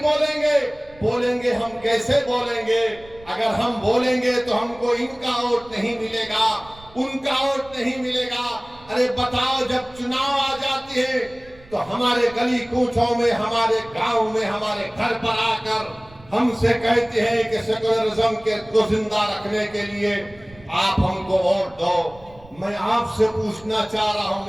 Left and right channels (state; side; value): noise; right; rumble, 24 dB below the sound